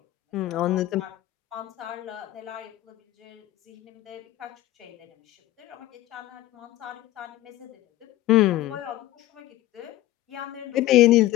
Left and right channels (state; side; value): quieter; right; 15.7 dB